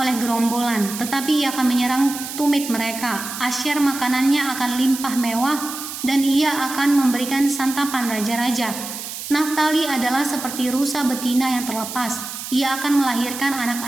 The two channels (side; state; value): right; noise; hiss, 8 dB below the sound